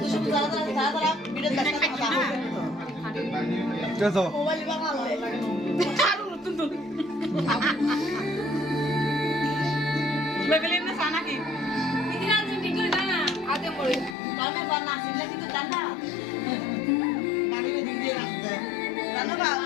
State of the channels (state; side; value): drops out; right; at 14.2 s